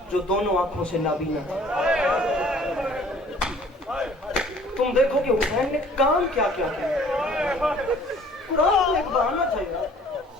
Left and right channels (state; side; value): normal; both; correlation 0.54